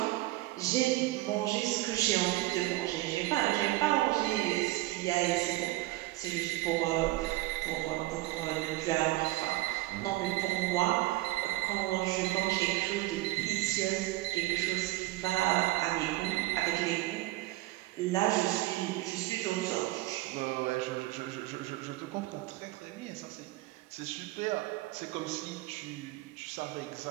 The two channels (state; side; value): quieter; left; 18.5 dB